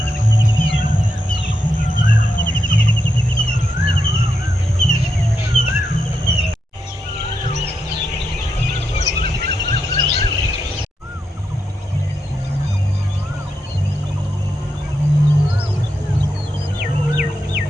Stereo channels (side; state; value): both; normal; correlation 0.84